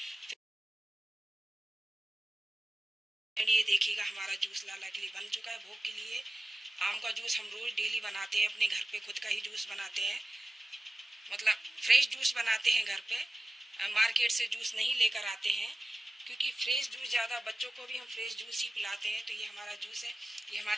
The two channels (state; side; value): normal; both; correlation 0.94